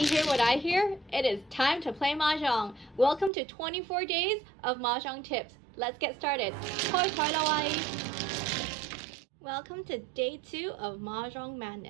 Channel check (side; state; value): left; drops out; at 3.3 s